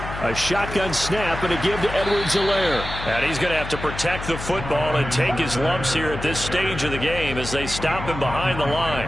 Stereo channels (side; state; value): left; noise; hum, 9 dB below the sound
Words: A shotgun snap and a give to Edwards-Helaire. And he's going to have to protect the football and take his lumps here at this stage of the game as they stop him behind the